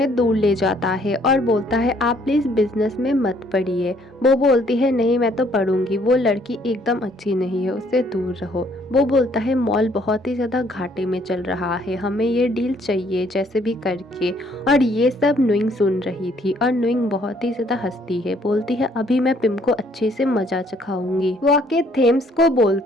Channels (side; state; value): both; normal; correlation 0.64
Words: दूर ले जाता है और बोलता है आप प्लीज बिजनेस में मत पड़िए। वो बोलती है नहीं मैं तो पढ़ूंगी, वो लड़की एकदम अच्छी नहीं है, उससे दूर रहो। वो बोलता है मॉल बहुत ही ज्यादा घाटे में चल रहा है, हमें ये डील चाहिए जैसे भी करके। और ये सब नुइंग सुन रही थी और नुइंग बहुत ही ज्यादा हंसती है, बोलती है अभी मैं पिम को अच्छे से मजा चखाऊंगी। वो आके थेम्स को